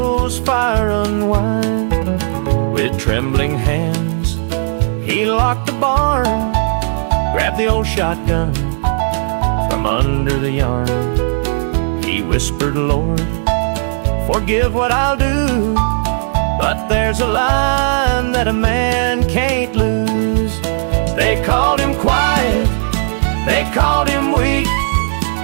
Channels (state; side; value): silent; left; digital silence